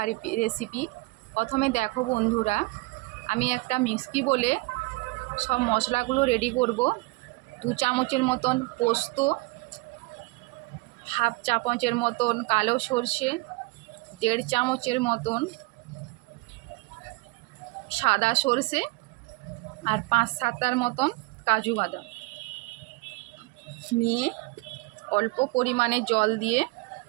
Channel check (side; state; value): left; quieter; 24.0 dB